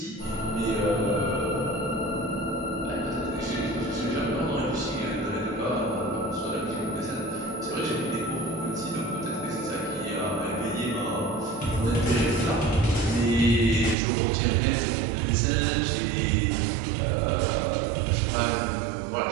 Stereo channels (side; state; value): left; drops out; at 14.0 s